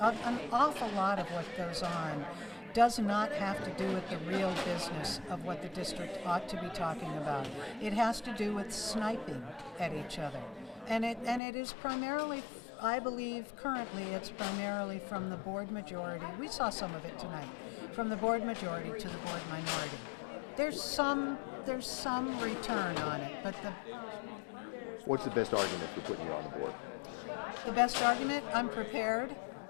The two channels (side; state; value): right; drops out; at 11.4 s